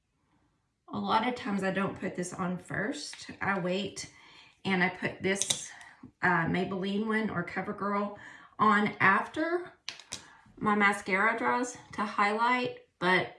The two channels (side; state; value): both; identical; correlation 1.00